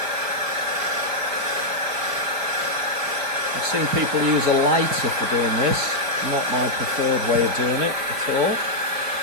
I've seen people use a lighter for doing this. Not my preferred way of doing it at all.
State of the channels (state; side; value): late; left; 4.9 ms